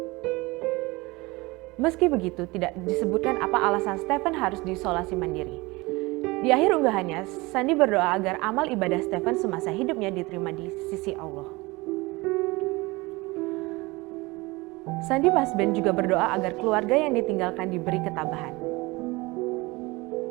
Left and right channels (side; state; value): left; quieter; 23.0 dB